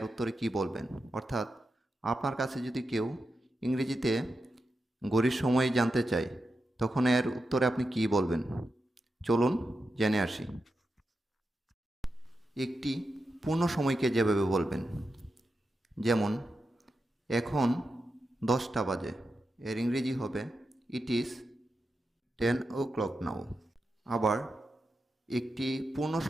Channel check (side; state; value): both; normal; correlation 0.89